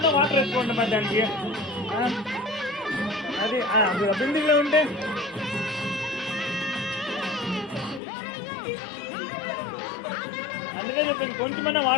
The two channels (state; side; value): drops out; right; at 8.0 s